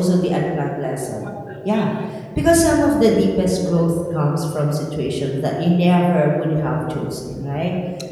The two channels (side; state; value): both; identical; correlation 1.00